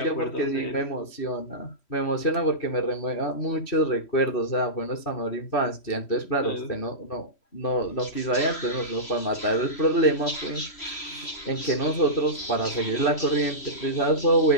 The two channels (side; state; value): right; late; 3.1 ms